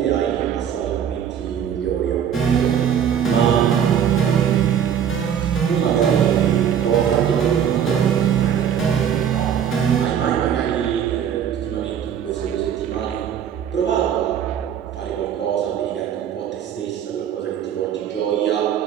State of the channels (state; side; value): quieter; left; 8.7 dB